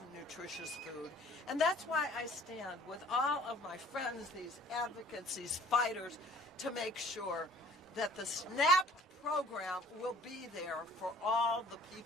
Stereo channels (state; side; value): normal; both; correlation 0.54